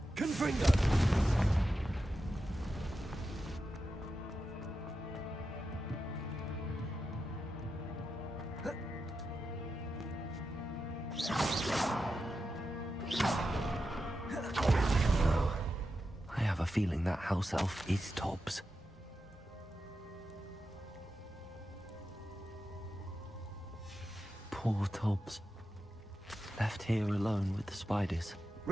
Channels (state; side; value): normal; both; correlation 0.89